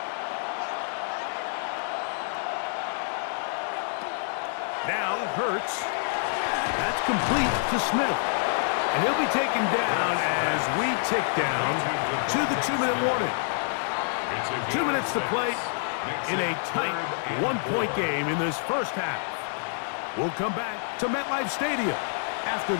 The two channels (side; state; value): right; silent; digital silence